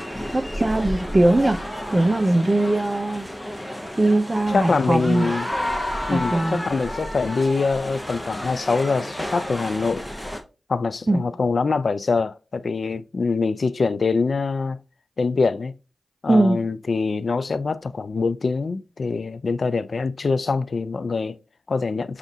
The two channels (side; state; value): both; normal; correlation 0.94